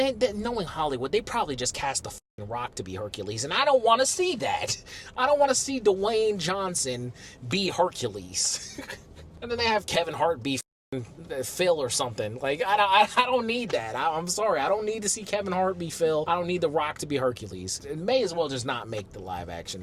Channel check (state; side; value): identical; both; correlation 1.00